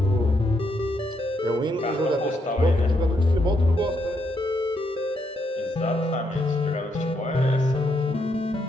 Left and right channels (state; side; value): normal; both; correlation 0.78